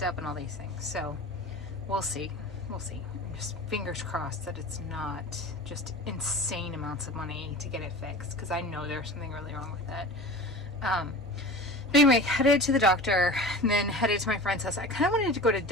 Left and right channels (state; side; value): normal; both; correlation 0.35